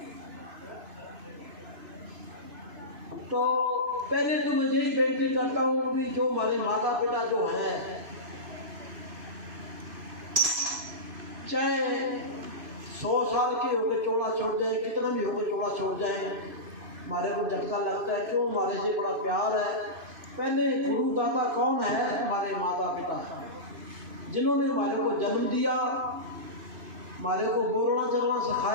तो पहले तो मैं यही बेनती करता हूँ कि जो हमारे माता पिता जो है, चाहे 100 साल के होकर चोला छोड़ जाए, कितना भी होकर चोला छोड़ जाए, हमारे को झटका लगता है। क्यों? हमारे से बड़ा प्यार है। पहले गुरु दाता कौन है? हमारे माता पिता, जिन्होंने हमारे को जन्म दिया, हमारे को बोलना चलना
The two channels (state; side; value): late; left; 3.0 ms